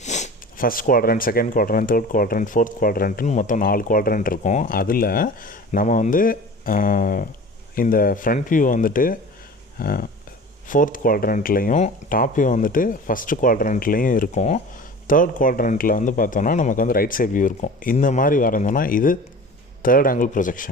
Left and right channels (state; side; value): normal; both; correlation 0.39